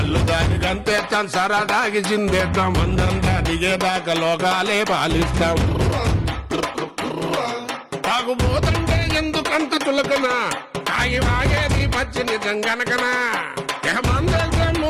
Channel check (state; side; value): identical; both; correlation 1.00